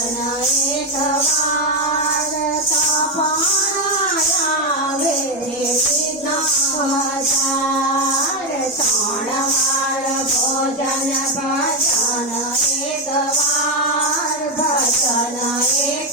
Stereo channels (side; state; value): both; normal; correlation 0.08